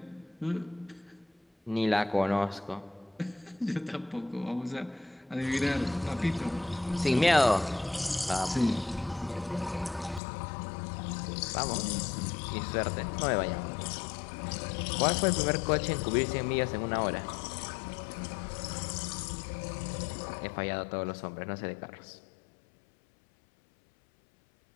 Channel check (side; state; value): right; drops out; at 10.2 s